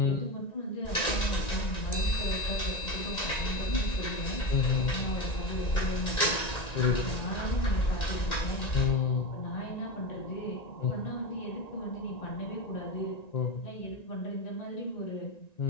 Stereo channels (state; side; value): late; right; 1.9 ms